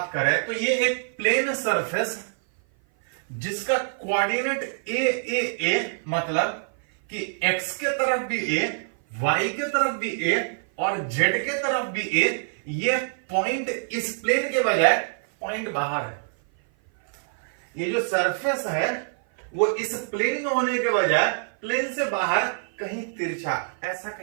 करें तो ये एक प्लेन सरफेस जिसका कोऑर्डिनेट ए मतलब कि x के तरफ भी a, y के तरफ भी a और z के तरफ भी a, ये पॉइंट इस प्लेन के बजाय पॉइंट बाहर है। ये जो सरफेस है वो इस प्लेन में होने के बजाय प्लेन से बाहर कहीं तिरछा, ऐसा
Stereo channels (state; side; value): silent; left; 56 dB below the other